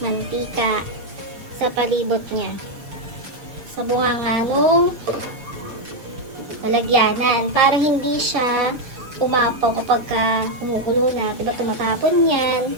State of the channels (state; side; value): late; left; 6.9 ms